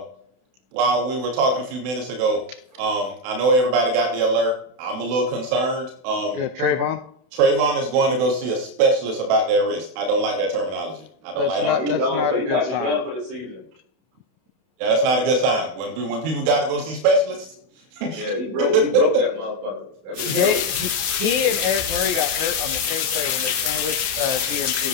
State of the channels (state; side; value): late; left; 31 ms